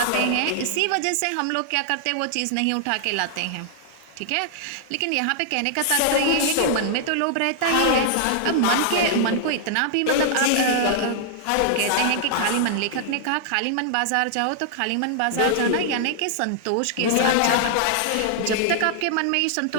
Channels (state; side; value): different; both; correlation -0.01